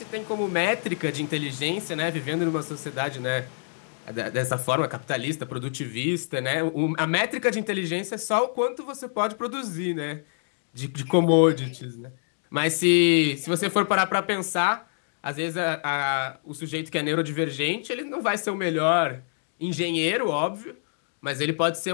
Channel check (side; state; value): right; silent; digital silence